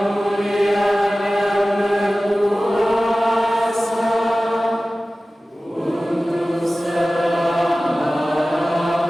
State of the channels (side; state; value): both; normal; correlation 0.96